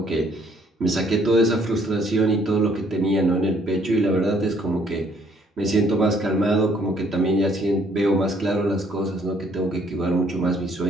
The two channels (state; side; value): normal; both; correlation 0.65